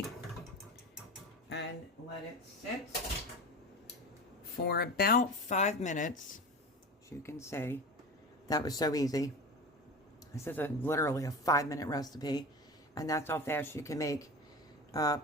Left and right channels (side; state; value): both; normal; correlation 0.30